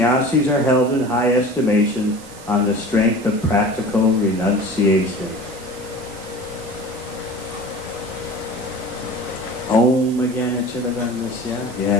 are held in high estimation on the strength of practical renunciation. Om Jnana-Chiravandasya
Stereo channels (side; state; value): right; noise; hiss, 19 dB below the sound